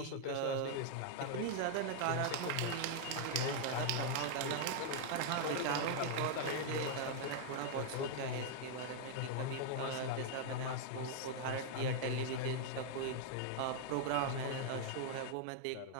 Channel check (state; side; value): different; both; correlation -0.01